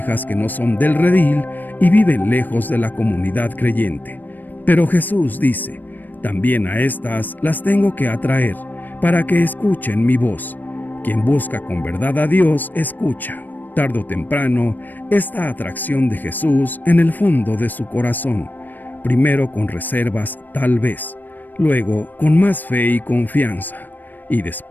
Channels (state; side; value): late; right; 0.089 ms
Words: que no son del redil y viven lejos de la comunidad creyente. Pero Jesús dice, también a estas las tengo que atraer, para que escuchen mi voz. Quien busca con verdad a Dios, escucha. Tarde o temprano, esta atracción de Jesús en el fondo de su corazón, primero con reservas tal vez, luego con más fe y confianza, y